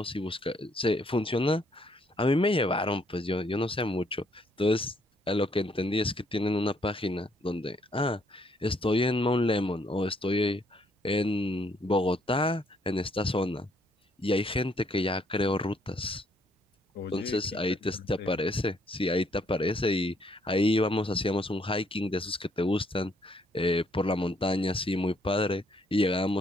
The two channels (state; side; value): normal; both; correlation 0.69